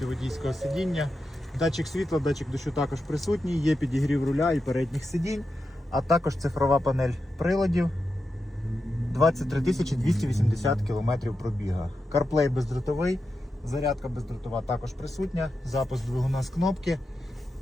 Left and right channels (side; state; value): both; normal; correlation 0.89